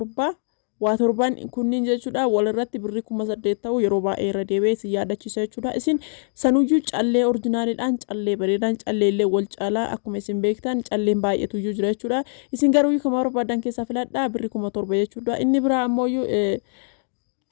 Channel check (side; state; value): right; silent; 63 dB below the other